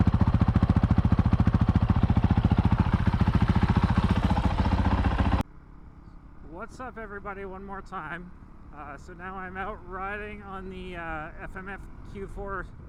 What's up, everybody, one more time. So now I'm out riding on the FMF Q4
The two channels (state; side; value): identical; both; correlation 1.00